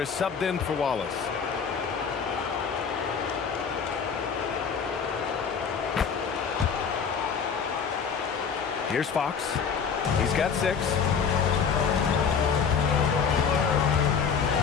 is subbed in for Wallace. Here's Fox. He's got 6.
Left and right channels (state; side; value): quieter; right; 6.4 dB